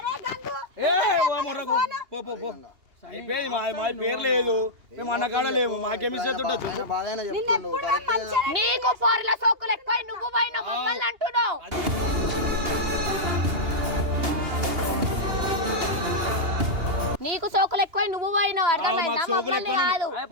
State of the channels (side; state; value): left; late; 2.8 ms